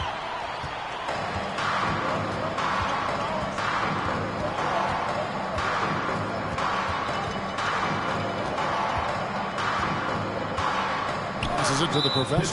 Passes it to the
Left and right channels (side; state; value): both; identical; correlation 1.00